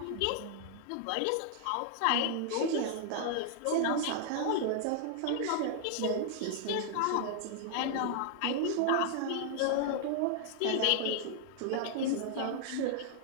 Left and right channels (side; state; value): both; different; correlation -0.01